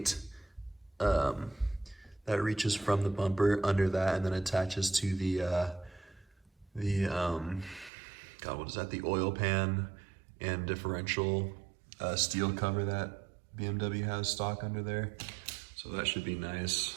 that reaches from the bumper under that and then attaches to the the oil pan and differential steel cover that BMW has stock under there. So that should be nice.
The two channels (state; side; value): drops out; left; at 7.9 s